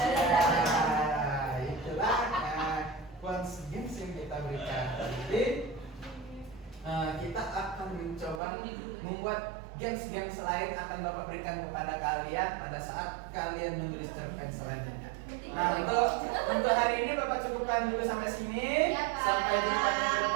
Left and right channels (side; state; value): left; drops out; at 8.4 s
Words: Itulah Quants Games yang kita berikan. Jadi kita akan mencoba membuat games-games lain akan Bapak berikan kepada kalian pada saat kalian menulis cerpen selanjutnya. Nah, untuk hari ini Bapak cukupkan dulu sampai sini. Ya, Pak. Sampai jumpa di